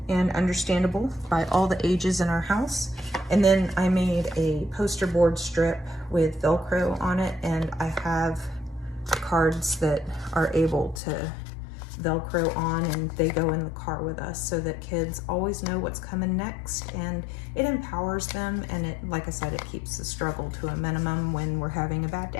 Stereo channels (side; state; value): right; drops out; at 11.0 s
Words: and understandable by all the ages in our house. And then I made a poster board strip with Velcro on it, and I have cards that are able to Velcro on, and they go in the car with us so that kids always know what's coming next, and it empowers them, and it, like I said, it keeps the struggle to a minimum when we're having a bad